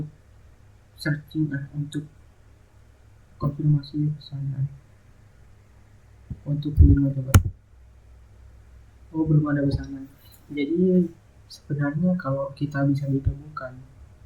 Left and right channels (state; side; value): identical; both; correlation 1.00